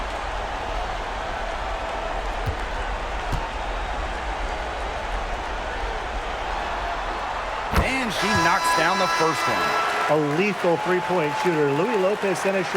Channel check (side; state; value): both; identical; correlation 1.00